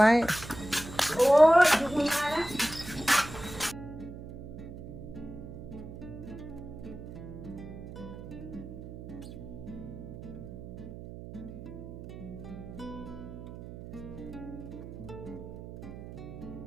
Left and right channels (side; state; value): right; noise; hum, 12 dB below the sound